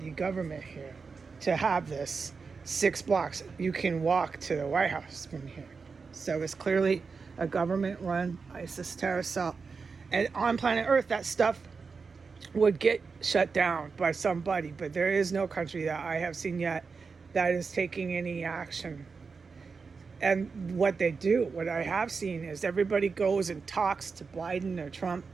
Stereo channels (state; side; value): quieter; left; 4.9 dB